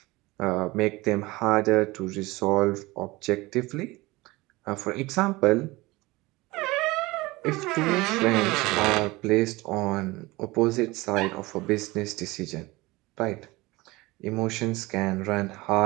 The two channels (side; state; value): left; quieter; 21.4 dB